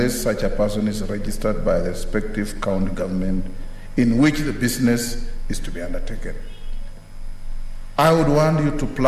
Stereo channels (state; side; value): identical; both; correlation 1.00